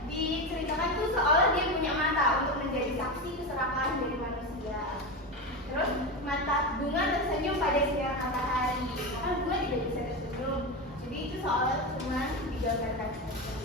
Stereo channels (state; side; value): normal; both; correlation 0.18